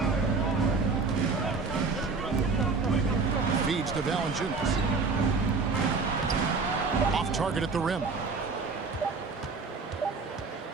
Feeds to Valanciunas. Off target at the rim.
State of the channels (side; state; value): left; quieter; 4.4 dB